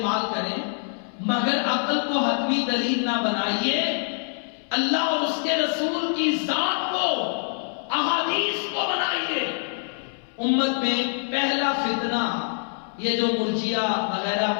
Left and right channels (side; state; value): right; silent; 62 dB below the other